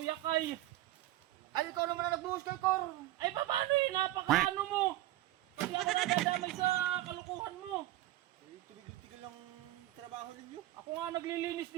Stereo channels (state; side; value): quieter; left; 15.7 dB